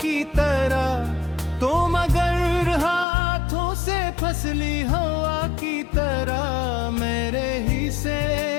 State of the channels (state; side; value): drops out; right; at 3.1 s